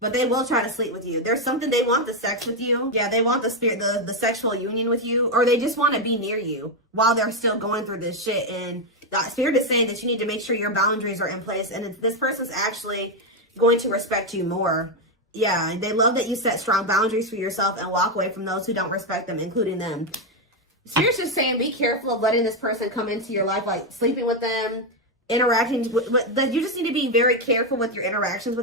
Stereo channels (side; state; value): both; normal; correlation 0.05